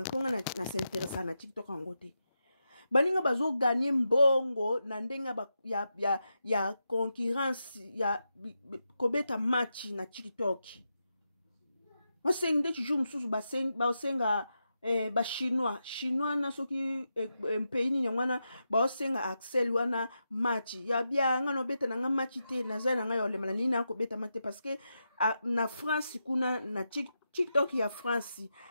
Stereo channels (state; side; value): inverted; both; correlation -0.87